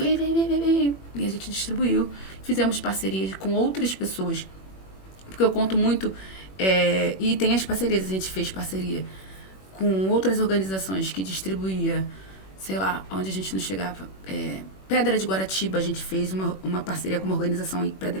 E a gente distribuiu. Fizemos parcerias com outras pessoas. Porque eu conto muito... e tem as parcerias, a gente fez parceria com outras organizações que distribuía, sei lá, onde a gente não chegava. Pedra de Guaratiba, a gente fez uma parceria com uma organização em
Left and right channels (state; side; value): late; right; 21 ms